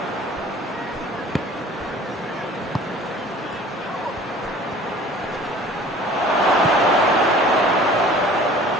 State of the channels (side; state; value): both; normal; correlation 0.47